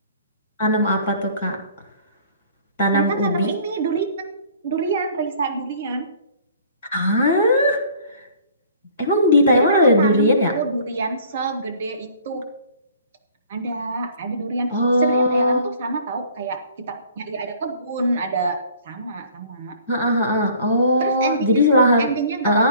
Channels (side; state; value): both; inverted; correlation -0.52